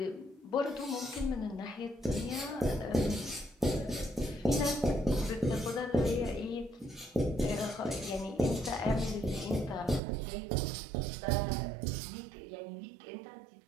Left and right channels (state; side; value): drops out; left; at 10.0 s